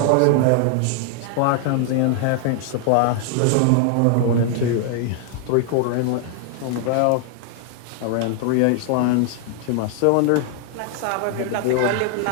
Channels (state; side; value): different; both; correlation 0.00